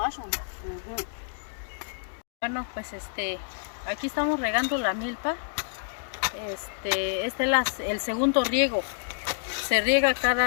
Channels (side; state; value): right; silent; digital silence